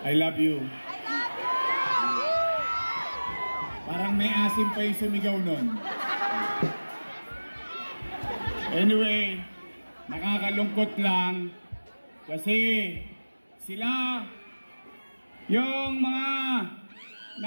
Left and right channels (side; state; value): both; inverted; correlation -1.00